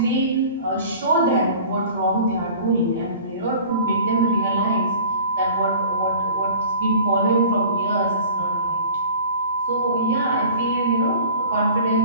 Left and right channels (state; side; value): inverted; both; correlation -0.44